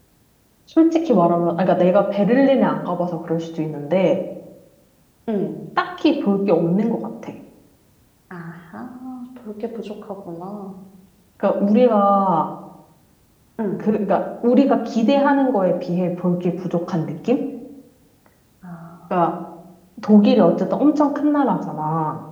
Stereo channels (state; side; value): identical; both; correlation 1.00